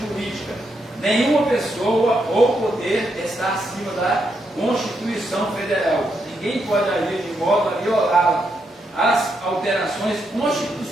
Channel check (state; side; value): normal; both; correlation 0.80